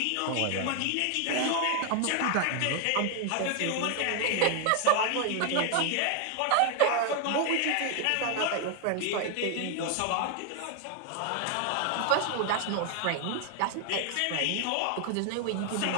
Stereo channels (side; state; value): both; different; correlation 0.00